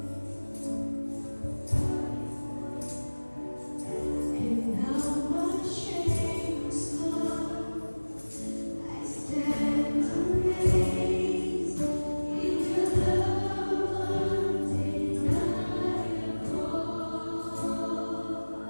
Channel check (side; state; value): both; inverted; correlation -1.00